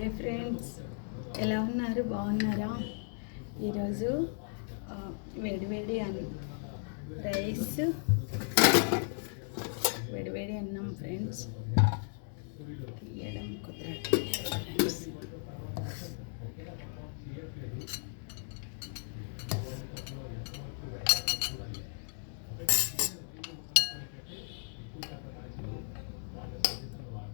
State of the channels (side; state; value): right; silent; 54 dB below the other